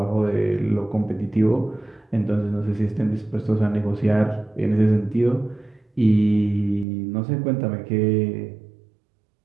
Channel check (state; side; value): drops out; left; at 6.9 s